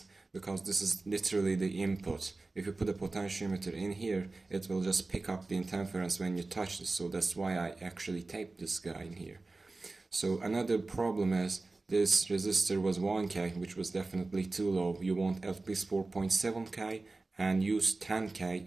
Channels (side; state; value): left; quieter; 3.4 dB